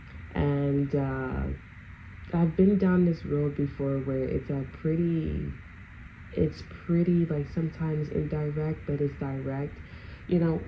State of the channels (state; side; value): identical; both; correlation 1.00